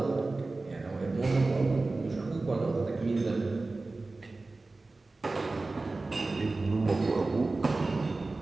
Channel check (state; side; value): quieter; left; 3.4 dB